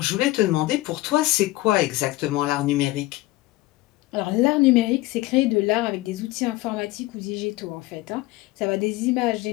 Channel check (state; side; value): quieter; right; 18.6 dB